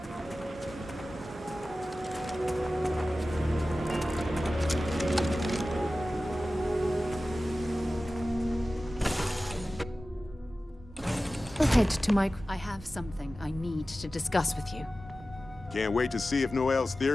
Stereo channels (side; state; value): both; normal; correlation 0.95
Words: Head to my... I have something I need to discuss with you. Can't wait to see if Noel's